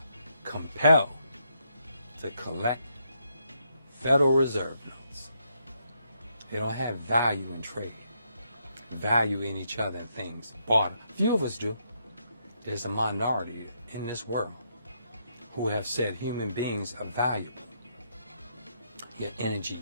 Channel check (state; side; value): inverted; both; correlation -0.77